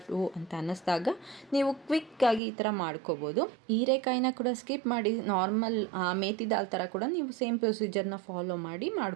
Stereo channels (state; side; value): drops out; left; at 2.4 s